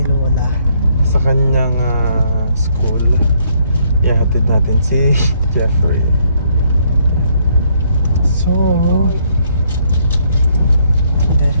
Lola. sa kanyang school. Ihatid natin si Jeffrey. So,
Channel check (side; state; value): both; inverted; correlation -0.70